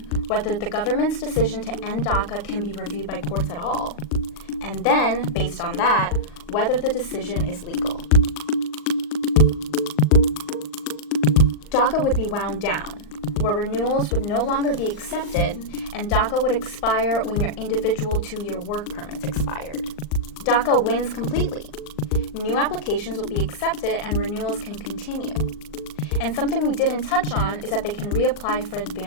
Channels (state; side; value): late; right; 39 ms